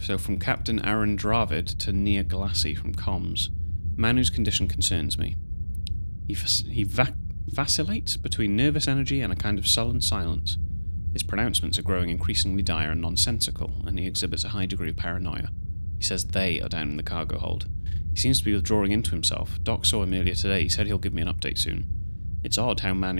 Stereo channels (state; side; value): inverted; both; correlation -1.00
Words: from Captain Aaron Dravid to Nia Glassy from comms. Man whose condition concerns me. He vacillates between nervous energy and a kind of sullen silence. His pronouncements are growing increasingly dire and nonsensical, and he exhibits a high degree of paranoia. He says they are down in the cargo hold. He seems to be withdrawing into himself. Doc saw him earlier today. He said he'll give me an update soon. It's odd how